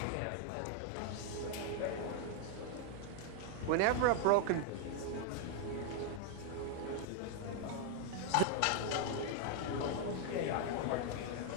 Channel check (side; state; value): both; different; correlation 0.00